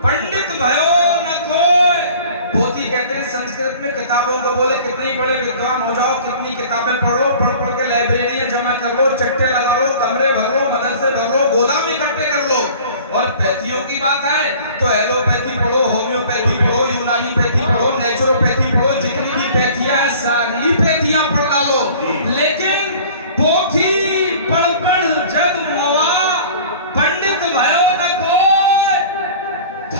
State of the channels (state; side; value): inverted; both; correlation -0.46